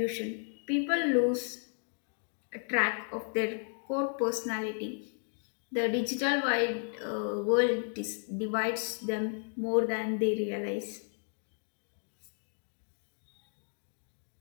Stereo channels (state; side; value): silent; right; 55 dB below the other